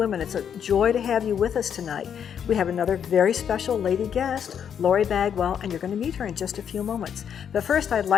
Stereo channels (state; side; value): quieter; right; 8.2 dB